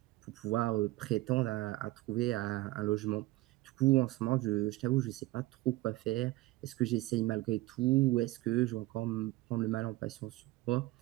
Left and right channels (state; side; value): quieter; left; 19.2 dB